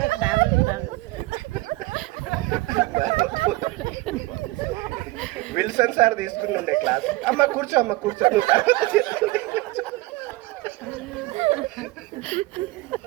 Wilson sir తీసుకుని క్లాస్. అమ్మ కూర్చో, అమ్మ కూర్చో.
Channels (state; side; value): quieter; left; 20.9 dB